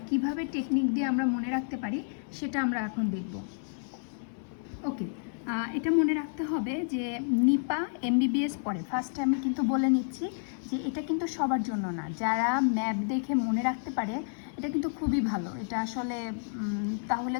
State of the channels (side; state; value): right; silent; 58 dB below the other